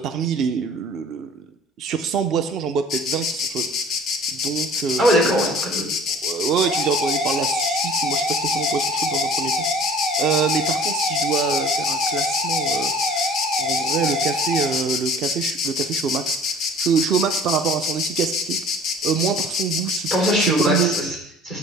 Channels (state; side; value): normal; both; correlation 0.47